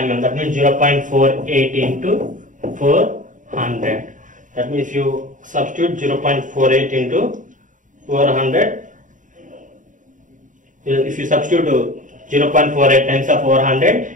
That means 0.48 into 400. That means if you substitute 0.48 into 400, if you substitute 0.48 times of 400,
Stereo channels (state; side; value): late; left; 0.37 ms